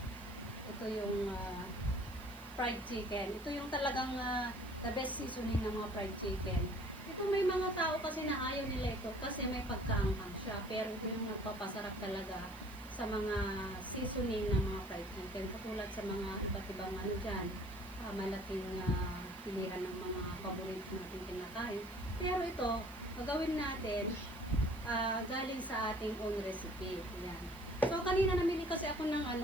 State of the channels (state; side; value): noise; right; hiss, 21 dB below the sound